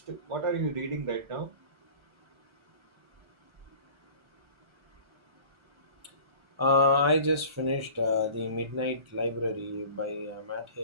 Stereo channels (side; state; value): left; late; 1.3 ms